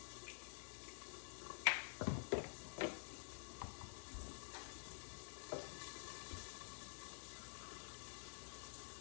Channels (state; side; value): silent; right; digital silence